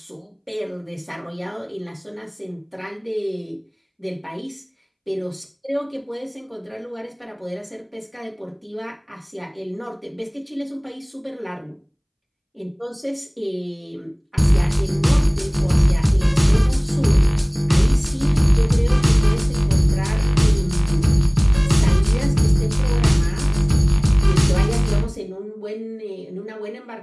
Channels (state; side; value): identical; both; correlation 1.00